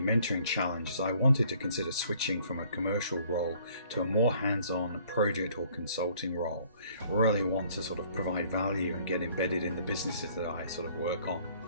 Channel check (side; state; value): both; inverted; correlation -0.59